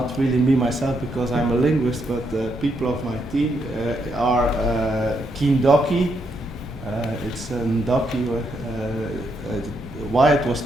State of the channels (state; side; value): normal; both; correlation 0.78